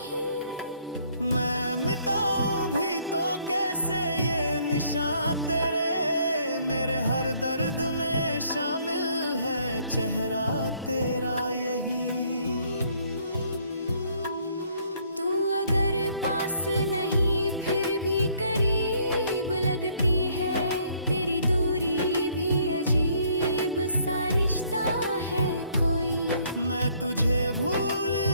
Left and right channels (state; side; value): inverted; both; correlation -0.64